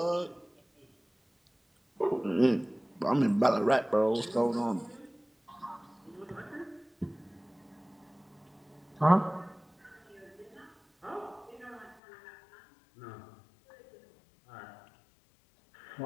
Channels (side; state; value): right; drops out; at 12.0 s